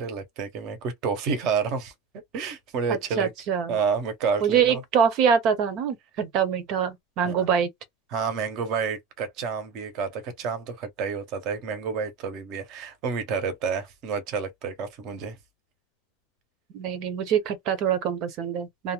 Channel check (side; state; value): left; quieter; 6.5 dB